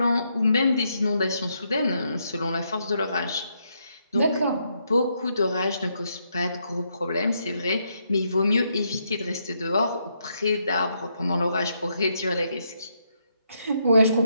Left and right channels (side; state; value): both; inverted; correlation -0.78